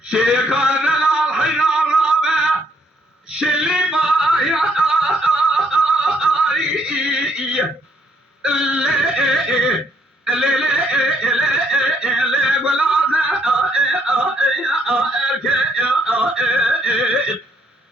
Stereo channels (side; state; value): both; normal; correlation 0.69